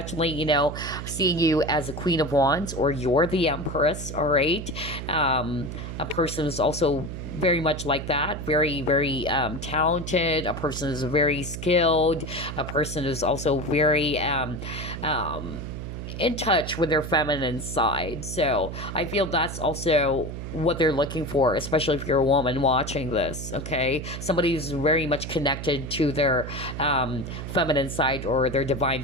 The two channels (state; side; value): noise; right; hum, 7 dB below the sound